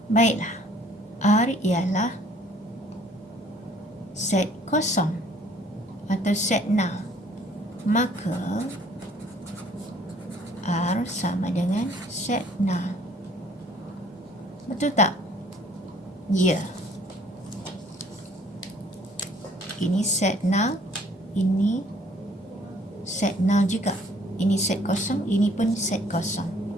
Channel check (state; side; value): normal; both; correlation 0.58